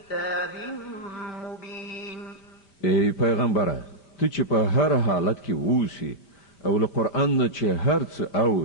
مبين ای پیغمبره ته چې په هر حالت کې اوسې او له قرآن نه چې هر څه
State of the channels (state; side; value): late; right; 5.1 ms